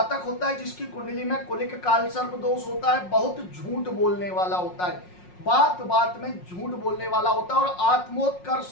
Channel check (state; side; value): late; right; 5.5 ms